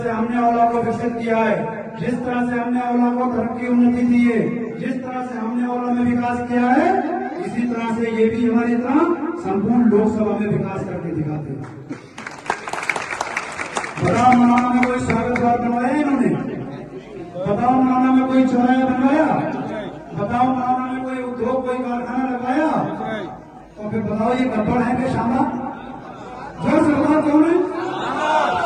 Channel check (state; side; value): identical; both; correlation 1.00